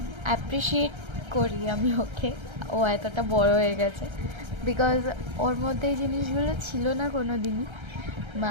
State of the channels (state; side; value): late; left; 1.3 ms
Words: অ্যাপ্রিসিয়েট করি আমি ওকে। ও এতটা বড় হয়ে গেছে বিকজ ওর মধ্যে এই জিনিসগুলো ছিল না কোনো দিনই।